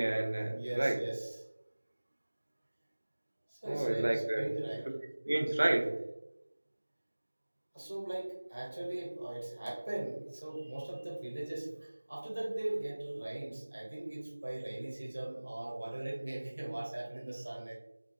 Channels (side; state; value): both; inverted; correlation -1.00